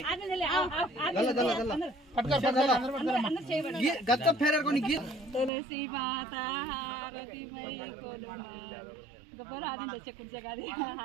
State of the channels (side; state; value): left; drops out; at 5.5 s